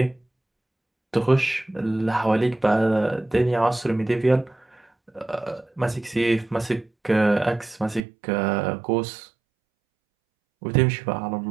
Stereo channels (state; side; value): drops out; left; at 8.0 s